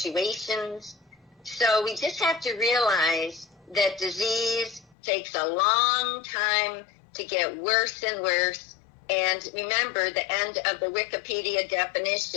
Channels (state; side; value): drops out; right; at 5.0 s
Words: So we just have to realize that disease takes a long time to get worse and worse. And remember the end of the Wikipedia